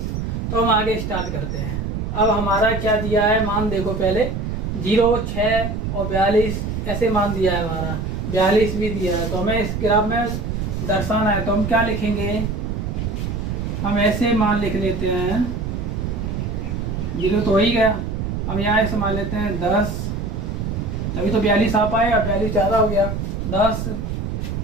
तो हम आगे स्टार्ट करते हैं। अब हमारा क्या दिया है मान, देखो पहले 0, 6 और 42 ऐसे मान दिया है हमारा, 42 भी दिया है। तो हमें इस ग्राफ में दर्शाना है, तो हम क्या लिखेंगे, हम ऐसे मान लिख लेते हैं। 0 तो हो ही गया, हम यहाँ ऐसे मान लेते हैं 10, अभी तो 42 आ पाएगा, 42 ज़्यादा हो गया। 10,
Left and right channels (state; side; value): noise; right; rumble, 3 dB below the sound